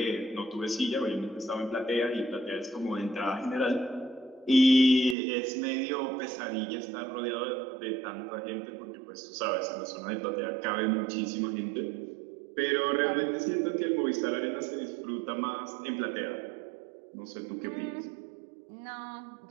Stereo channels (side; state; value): left; drops out; at 5.2 s